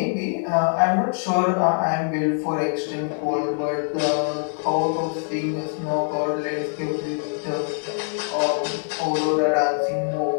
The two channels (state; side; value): silent; right; 55 dB below the other